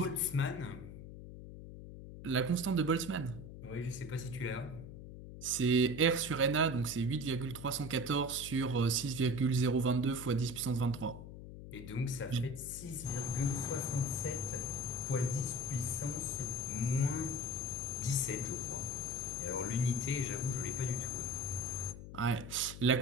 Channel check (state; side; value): noise; left; hum, 12 dB below the sound